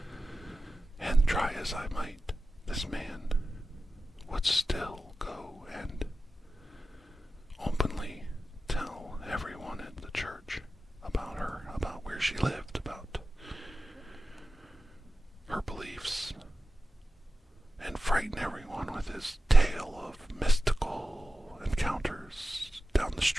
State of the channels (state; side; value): normal; both; correlation 0.94